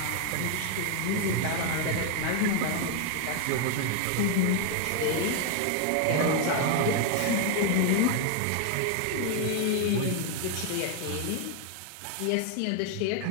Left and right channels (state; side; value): different; both; correlation 0.01